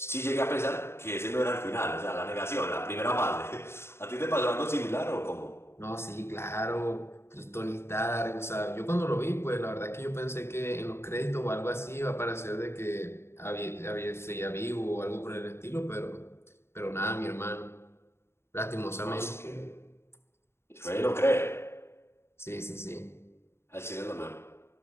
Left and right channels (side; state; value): right; late; 0.12 ms